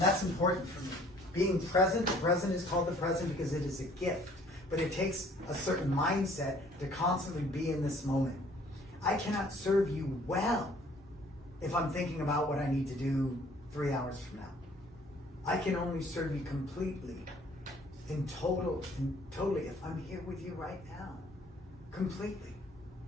that's important for me. Being present, the present is called the present because it is a gift. But it takes a certain mindset to constantly be in this moment. I cannot serve you well if I'm thinking about what I need to do 3 hours from now. I can only serve you completely, totally if I'm here with you right now. Completely.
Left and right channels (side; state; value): both; normal; correlation 0.57